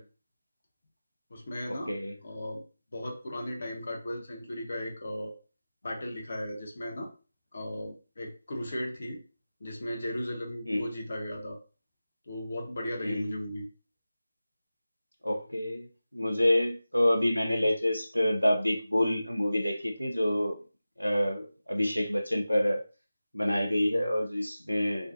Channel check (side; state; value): both; inverted; correlation -0.95